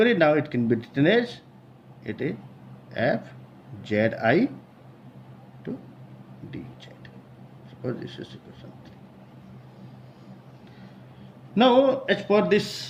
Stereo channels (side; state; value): both; identical; correlation 1.00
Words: now it can be written as it is F ZI to DZ. Suppose this is equation 3. Now as per